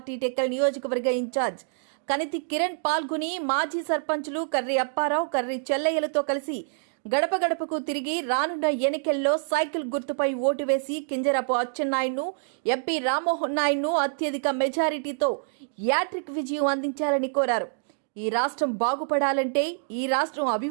టెక్కల్ నియోజకవర్గ ఇన్ఛార్జ్ కనితి కిరణ్ పాల్గొని మాజీ సర్పంచులు కర్రి అప్పారావు, కర్రి చెల్లయ్యలతో కలిసి గడప గడపకు తిరిగి రానున్న ఎన్నికల్లో సైకిల్ గుర్తుపై ఓటు వేసి కింజరాపు అచ్చెన్నాయుడును, ఎంపీ రామ్మోహన్ నాయుడును అత్యధిక మెజారిటీతో యాట్రిక్ విజయం అందించాలని కోరారు. ఈ రాష్ట్రం బాగుపడాలంటే, ఈ రాష్ట్రం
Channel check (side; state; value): left; silent; digital silence